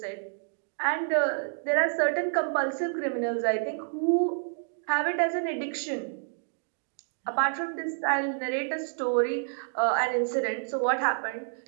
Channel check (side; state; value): left; silent; digital silence